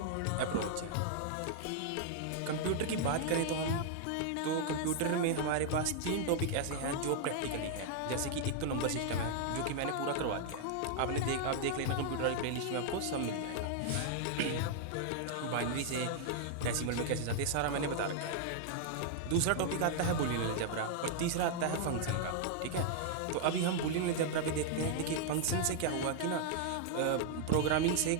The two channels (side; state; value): both; different; correlation -0.01